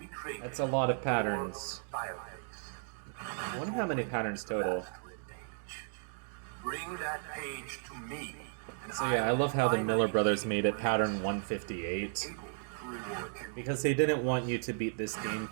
That's it a lot of for patterns. Fireplace. I wonder how many patterns total. Last red page. Bring that page to me. and So yeah, I will love how the finally Miller brothers be made it pattern 158. able to reward you. Because they didn't want you to beat this game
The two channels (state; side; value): silent; left; 55 dB below the other